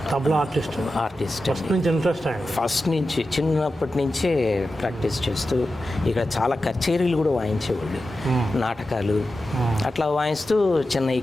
ఆర్టిస్ట్ ఫస్ట్ నుంచి ఇంట్రెస్ట్ ఆయన. ఫస్ట్ నుంచి చిన్నప్పటి నుంచే ప్రాక్టీస్ చేస్తూ ఇక్కడ చాలా కచేరీలు కూడా వాయించేవాళ్ళు, నాటకాలు అట్లా వాయిస్తూ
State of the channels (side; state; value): both; normal; correlation 0.92